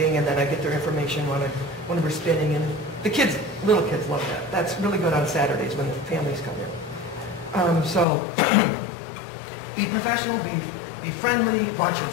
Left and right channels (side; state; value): right; drops out; at 8.1 s